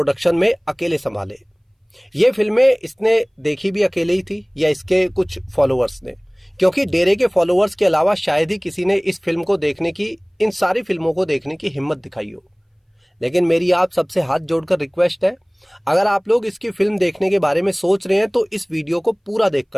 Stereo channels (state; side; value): identical; both; correlation 1.00